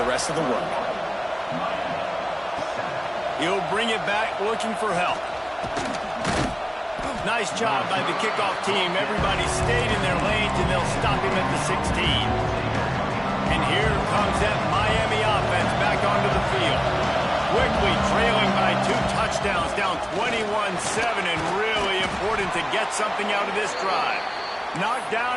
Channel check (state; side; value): identical; both; correlation 1.00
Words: rest of the work. He'll bring it back looking for help. Nice job by the kickoff team. Everybody stayed in their lanes, and they'll stop him at the 16. And here comes that Miami offense back onto the field. Quickly trailing by 2 touchdowns, down 21-7, and really important to get something out of this drive. Knocked